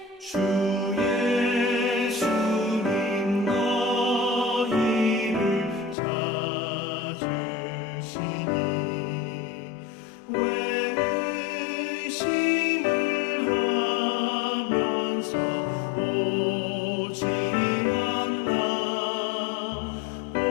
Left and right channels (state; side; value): drops out; right; at 6.0 s